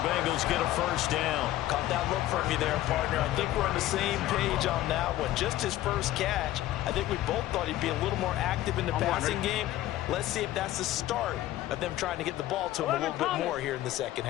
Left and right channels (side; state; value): right; quieter; 14.7 dB